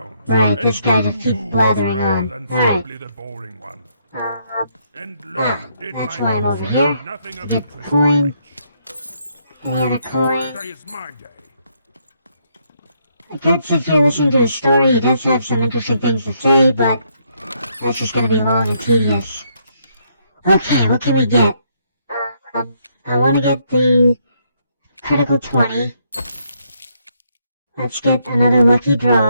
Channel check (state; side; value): inverted; both; correlation -0.73